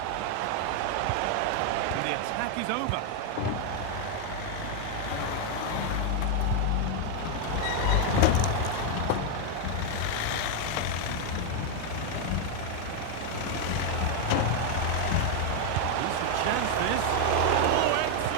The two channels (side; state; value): both; different; correlation 0.00